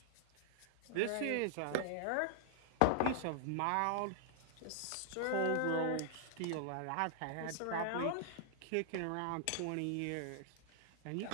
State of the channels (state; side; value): different; both; correlation 0.00